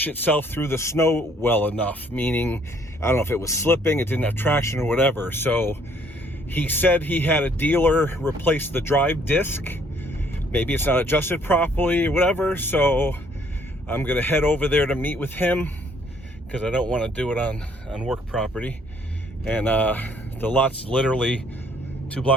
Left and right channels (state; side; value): normal; both; correlation 0.63